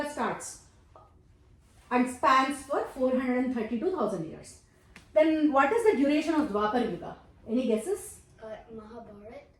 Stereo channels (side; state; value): both; identical; correlation 1.00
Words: starts and spans for 432,000 years. Then what is the duration of Dwapar Yuga? Any guesses? Mahabharat.